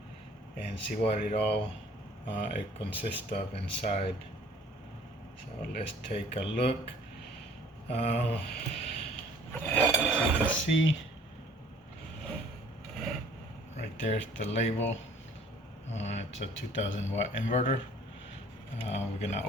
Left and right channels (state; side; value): normal; both; correlation 0.54